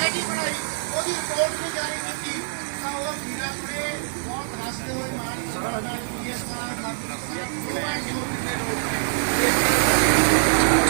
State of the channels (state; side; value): silent; left; 62 dB below the other